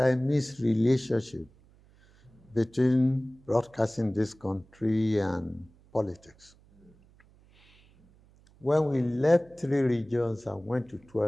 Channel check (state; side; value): noise; right; hum, 29 dB below the sound